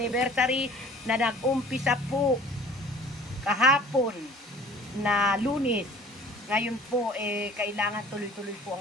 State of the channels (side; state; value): both; normal; correlation 0.49